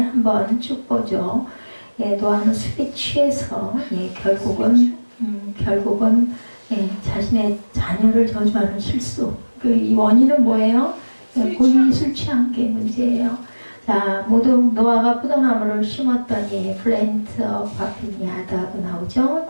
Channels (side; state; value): both; inverted; correlation -1.00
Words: 쭉 보죠. 예, 노아는 술에 취해서 결국은 자신의 자녀를 저주하는 실수. 이 원인은 뭐예요? 본인이 술 취한 게 문제예요. 자, 모두 노아가 포도나무를 심었더니 플랜트와 빈야드하고 나오죠.